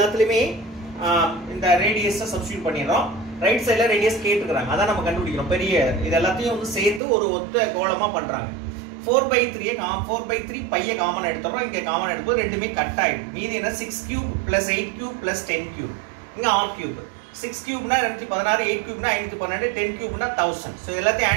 இந்த ரேடியஸை சப்ஸ்டிட்யூட் பண்ணிரோம். ரைட் சைடுல ரேடியஸ் கேட்டுக்கறாங்க. அத நம்ம கண்டுபிடிக்கிறோம். பெரிய இது எல்லாத்தையும் வந்து சேர்த்து ஒரு ஒத்த கோளமா பண்றாங்க. 4/3 4/3 பைய காமன் எடுத்துறோம். இங்க காமன் எடுக்கும்போது ரெண்டுமே கட் ஆயிடும். மீதி என்ன 6 cube plus 8 cube plus 10 cube. இங்க r cube. 6 cubeனா 216, 8 cubeனா 512, 10 cubeனா 1000. சோ இதெல்லாம்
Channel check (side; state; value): left; drops out; at 7.0 s